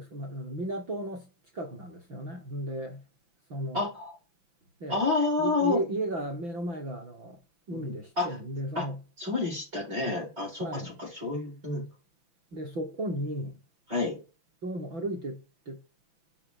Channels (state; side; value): late; left; 5.9 ms